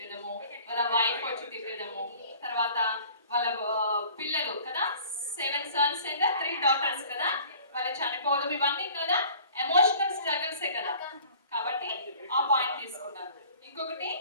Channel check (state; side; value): inverted; both; correlation -0.48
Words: వాళ్ళ వైఫ్ వచ్చి తిట్టడము, తర్వాత వాళ్ళ పిల్లలు కదా 7 sons and 3 daughters కదా, వాళ్ళు చనిపోవడం, ఇవన్నీ కదా ఎమోషనల్ స్ట్రగుల్సే కదా. కాబట్టి ఆ పాయింట్ తీసుకున్నారు. ఇంకొకటి